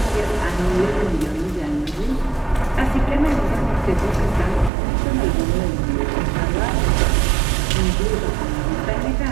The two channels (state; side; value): drops out; left; at 4.7 s